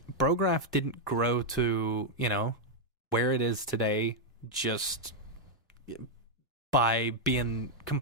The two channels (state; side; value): normal; both; correlation -0.02